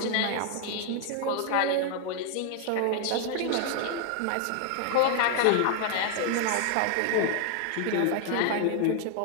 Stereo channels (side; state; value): both; different; correlation 0.00